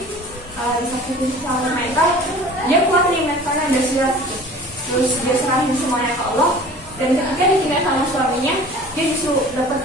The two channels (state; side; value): normal; both; correlation 0.44